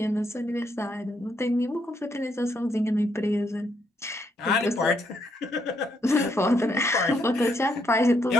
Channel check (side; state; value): both; normal; correlation 0.75